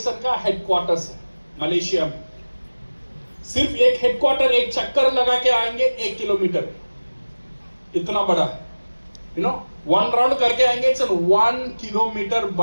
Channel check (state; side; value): inverted; both; correlation -1.00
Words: का हेडक्वार्टर्स है मलेशिया में। सिर्फ एक हेडक्वार्टर, एक चक्कर लगा के आएंगे 1 किलोमीटर, इतना बड़ा है, यू नो, 1 राउंड करके आएंगे। इट्स 1 किलोमीटर